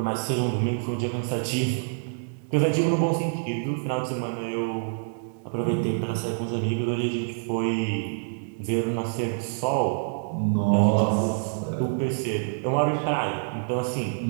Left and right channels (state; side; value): silent; left; 61 dB below the other